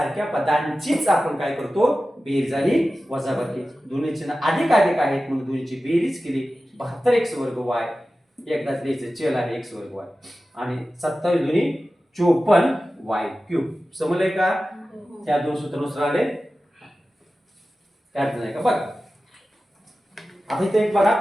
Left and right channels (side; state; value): both; normal; correlation 0.95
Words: पदांचीच आपण काय करतो? बेरीज आणि वजाबाकी. दोन्ही चिन्ह अधिक अधिक आहेत म्हणून दोन्हीची बेरीज केली. 72x वर्ग y एकदाच लिहायचं, चल आहे x वर्ग y आणि 27 दोन्ही 54y क्यूब. समजलंय का? त्या दोन सूत्रानुसार आले, काय अडचण आहे का? बघा आता इथे एक बघा